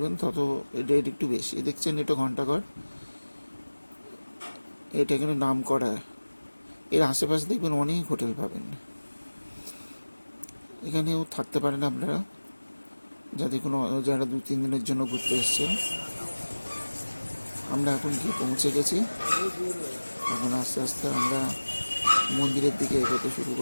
তত রেট একটু বেশি। দেখছেন এটা ঘন্টাঘর, এটা এখানে নাম করা। এর আশেপাশে দেখবেন অনেক হোটেল পাবেন। এখানেও থাকতে পারেন আপনারা, যাতে কোনো যারা 2-3 দিনের জন্য ঘুরতে এসছেন। আমরা এখন গিয়ে পৌঁছে গেছি। এখন আস্তে আস্তে আমরা মন্দিরের দিকে এগোতে শুরু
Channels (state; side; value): inverted; both; correlation -1.00